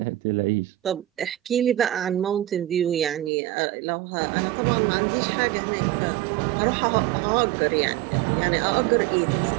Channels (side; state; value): left; drops out; at 3.3 s